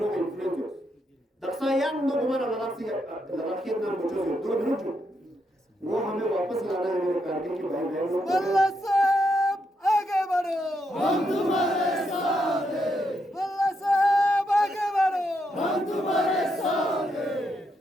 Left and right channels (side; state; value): both; normal; correlation 0.80